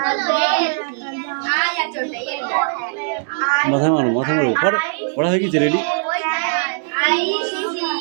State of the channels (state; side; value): silent; left; 57 dB below the other